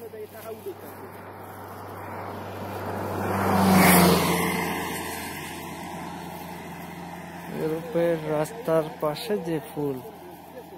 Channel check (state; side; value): identical; both; correlation 1.00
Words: দেয় টাকা উঠে থাকে ইউরোপের রাস্তার পাশে যে ফুল,